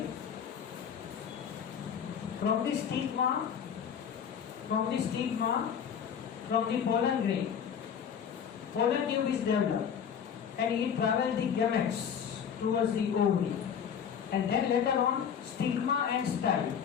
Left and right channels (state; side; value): quieter; right; 7.9 dB